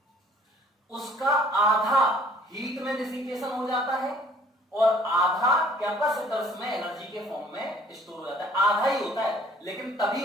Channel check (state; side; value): normal; both; correlation 0.56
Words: उसका आधा हीट में डिसिपेशन हो जाता है, और आधा कैपेसिटर्स में एनर्जी के फॉर्म में स्टोर हो जाता है, आधा ही होता है, लेकिन